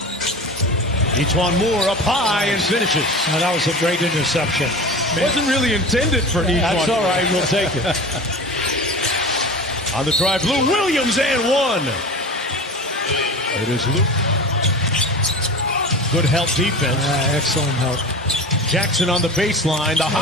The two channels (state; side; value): normal; both; correlation 0.33